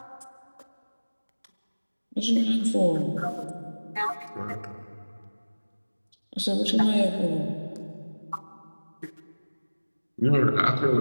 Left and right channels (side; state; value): both; inverted; correlation -1.00